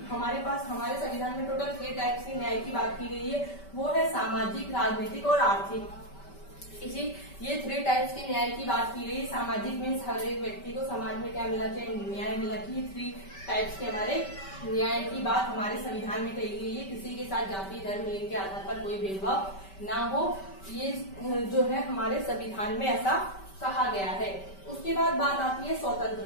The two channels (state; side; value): late; right; 5.2 ms